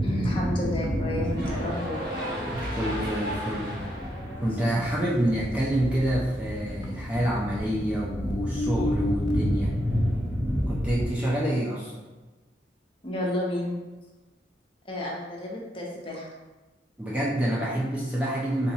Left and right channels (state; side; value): normal; both; correlation 0.80